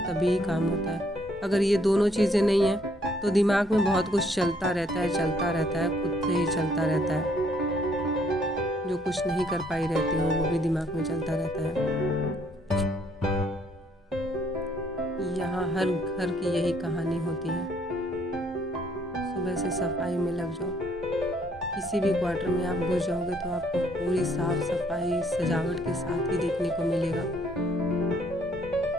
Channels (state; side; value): normal; both; correlation 0.66